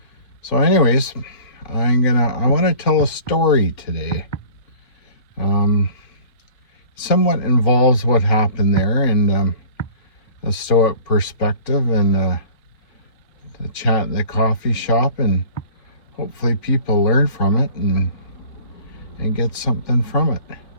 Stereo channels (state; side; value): late; right; 3.1 ms